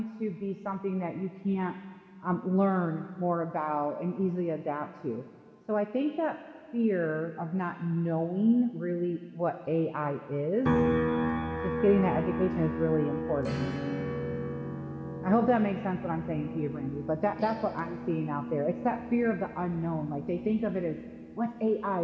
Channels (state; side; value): identical; both; correlation 1.00